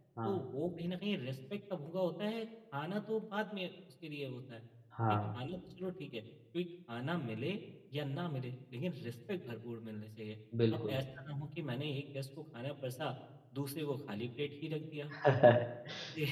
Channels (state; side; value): identical; both; correlation 1.00